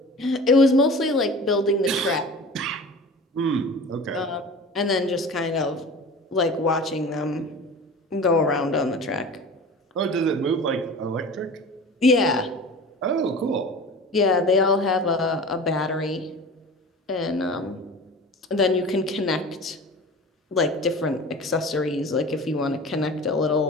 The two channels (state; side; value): normal; both; correlation 0.37